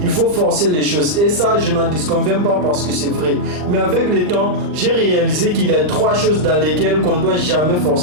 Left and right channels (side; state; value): left; late; 39 ms